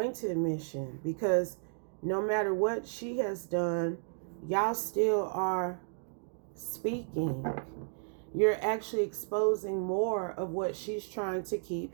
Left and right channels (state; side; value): silent; left; digital silence